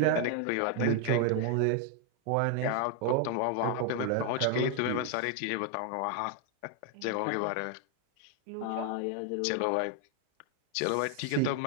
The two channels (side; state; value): both; different; correlation 0.00